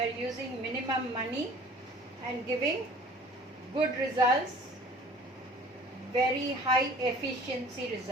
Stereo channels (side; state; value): both; normal; correlation 0.49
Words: using minimum money and giving good results, very high efficiency